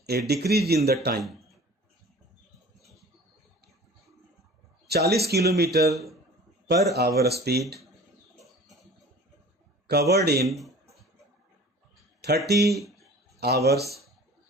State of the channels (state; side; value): normal; both; correlation 0.44